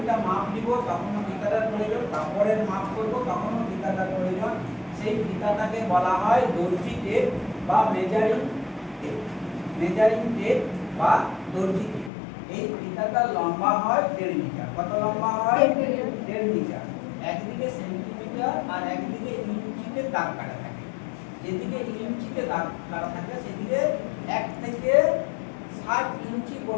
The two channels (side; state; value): right; drops out; at 12.1 s